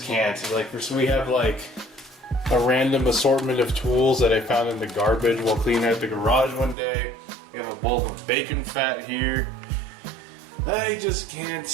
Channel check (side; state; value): left; drops out; at 6.8 s